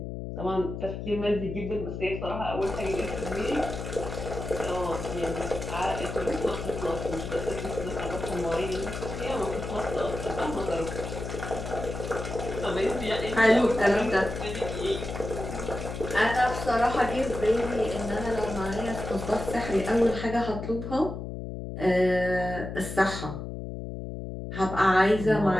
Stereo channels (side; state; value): left; noise; hum, 7 dB below the sound